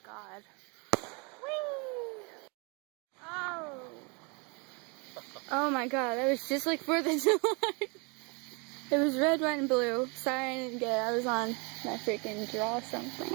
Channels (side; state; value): left; quieter; 31.5 dB